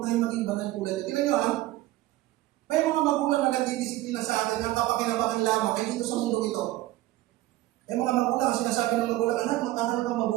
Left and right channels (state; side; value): quieter; left; 16.7 dB